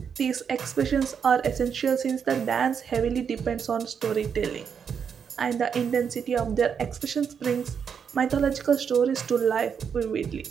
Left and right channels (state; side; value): quieter; left; 7.0 dB